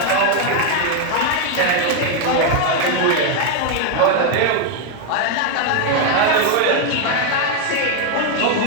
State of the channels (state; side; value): different; both; correlation 0.01